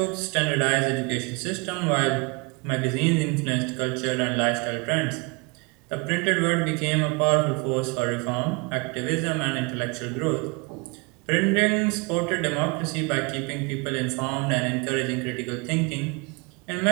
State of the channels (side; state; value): left; quieter; 30.0 dB